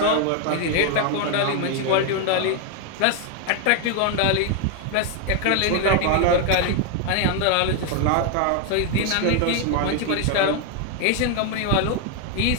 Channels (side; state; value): both; different; correlation 0.01